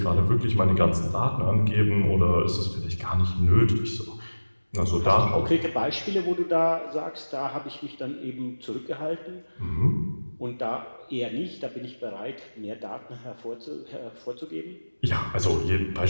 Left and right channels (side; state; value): both; inverted; correlation -1.00